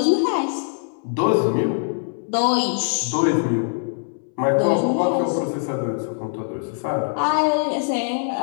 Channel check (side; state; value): right; silent; 62 dB below the other